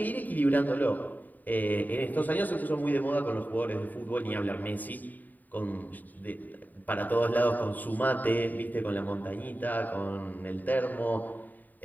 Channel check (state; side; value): late; right; 0.085 ms